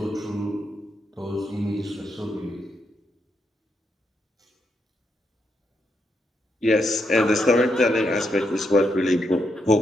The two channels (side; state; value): both; normal; correlation 0.80